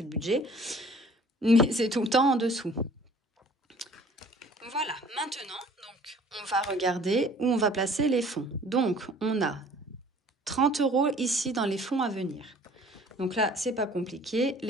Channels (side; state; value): both; normal; correlation 0.52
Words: le budget. Mais c'est tout le temps en dessous. Voilà, maintenant, donc, on va regarder où on va placer les fonds. Donc, on a 30 € ici dans les fonds à venir. Donc là, c'est pas compliqué.